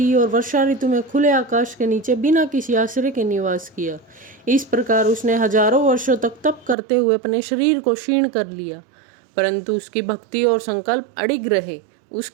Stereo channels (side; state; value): left; drops out; at 6.8 s